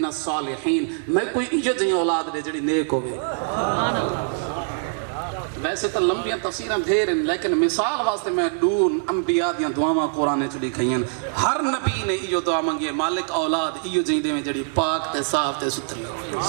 الصالحین، میں کوئی ایجا جہاں اولاد دے جڑی نیک ہوگی۔ ویسے تو لمبیاں تفسیریں دھیر ہیں لیکن مثال واسطے میں دون انبیاء دیاں دعاواں قرآن چڑی کھئیں، ہر نبی نے ایو دعا منگی ہے مالک اولاد ایو جہاں دے میں جڑی پاک تے صاف تے ستھری ہوئے۔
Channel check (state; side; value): silent; left; 63 dB below the other